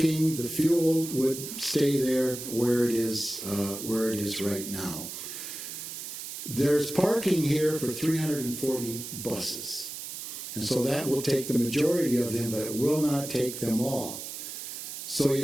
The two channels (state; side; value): noise; right; hiss, 8 dB below the sound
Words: The fuel would stay there where it is right now. There's parking here for 340 buses. And so that will take the majority of them, but it will not take them all. So